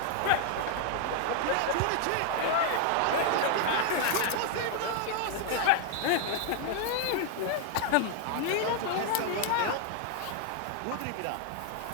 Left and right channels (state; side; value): different; both; correlation 0.00